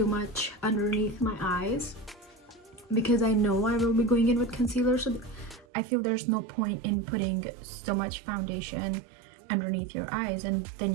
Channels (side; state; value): left; drops out; at 5.7 s